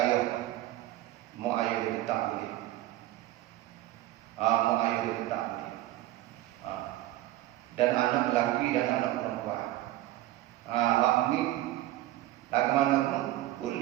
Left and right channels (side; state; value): left; quieter; 15.5 dB